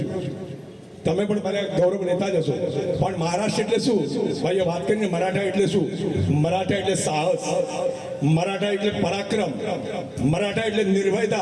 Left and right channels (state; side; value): identical; both; correlation 1.00